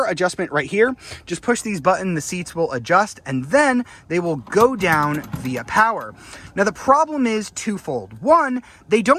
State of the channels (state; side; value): identical; both; correlation 1.00